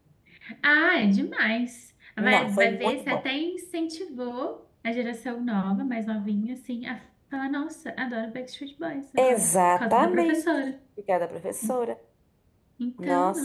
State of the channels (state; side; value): identical; both; correlation 1.00